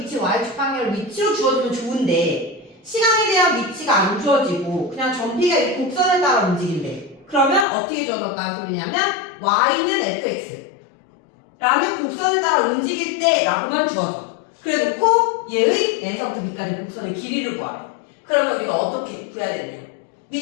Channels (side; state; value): right; drops out; at 7.7 s